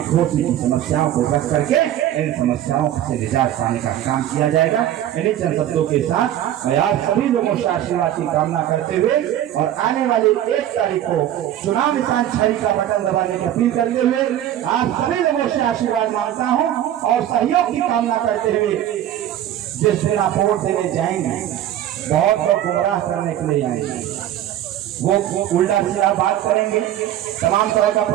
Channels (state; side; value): quieter; left; 11.9 dB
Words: की समस्याओं को रख करके इन समस्याओं से निजात पाने का काम किया जाएगा। इन्हीं चंद शब्दों के साथ मैं आप सभी लोगों से आशीर्वाद की कामना करते हुए और आने वाली 1 तारीख को चुनाव निशान छड़ी का बटन दबाने की अपील करते हुए आप सभी लोगों से आशीर्वाद मांगता हूं और सहयोग की कामना करते हुए जिस दिन आप वोट देने जाएंगे बहुत लोग गुमराह करने के लिए आएंगे, वो उल्टा सीधा बात करेंगे, तमाम तरह का